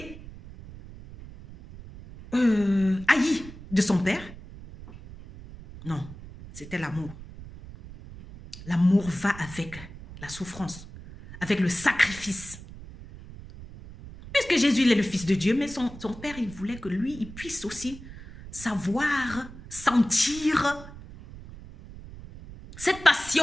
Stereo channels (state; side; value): noise; right; rumble, 15 dB below the sound